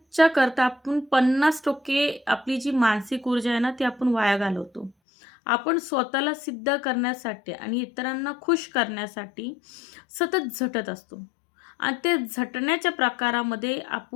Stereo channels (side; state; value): right; drops out; at 5.0 s